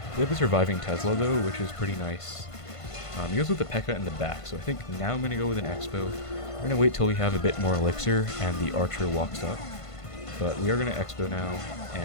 We have a surviving Tesla though, which is pretty nice. He goes with the P.E.K.K.A in the back, so I think now I'm going to go with an Xbow. We're going to wait till we have a bit more elixir and the Archer walks up. But we are going to Xbow now,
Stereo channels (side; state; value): right; late; 1.5 ms